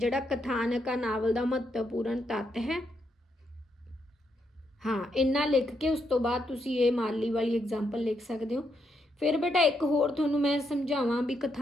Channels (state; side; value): normal; both; correlation 0.78